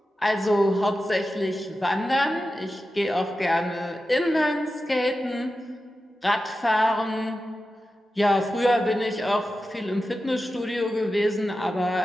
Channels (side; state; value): both; normal; correlation 0.92